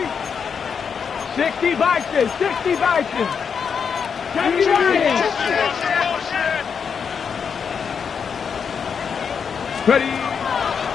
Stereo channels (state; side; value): quieter; right; 6.5 dB